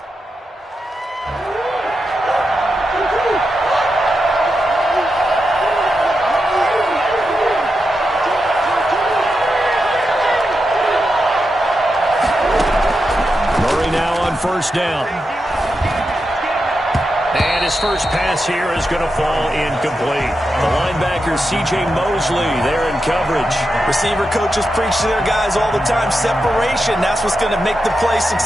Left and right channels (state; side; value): normal; both; correlation 0.87